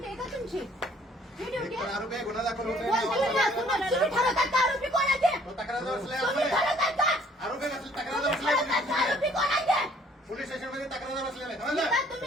आहे का तुमची? ही ड्युटी आहे? आरोपी आहे, गुन्हा दाखल होतोय. तुम्ही ठरवतात का आरोपी कोण आहे ते? तक्रार बसलाय तुम्ही ठरवतात का? आरोपी कसली तक्रार ठरवतात का आरोपी कोण आहे ते? पोलीस स्टेशन मध्ये तक्रार बसलेला आहे. आता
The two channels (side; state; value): both; normal; correlation 0.59